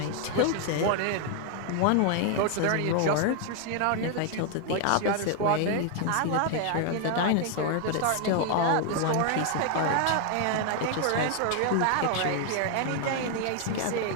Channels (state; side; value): different; both; correlation 0.00